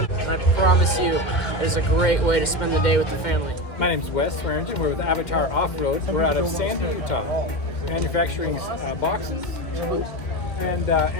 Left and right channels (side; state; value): right; late; 2.1 ms